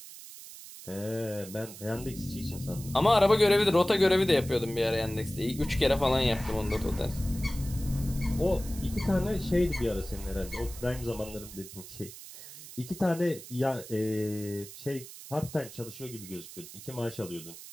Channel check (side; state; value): right; noise; hiss, 15 dB below the sound